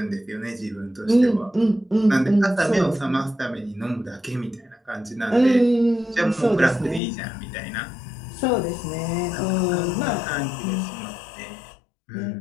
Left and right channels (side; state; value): right; drops out; at 7.0 s